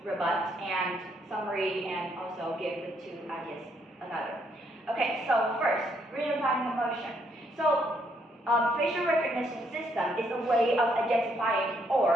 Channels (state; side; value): normal; both; correlation 0.72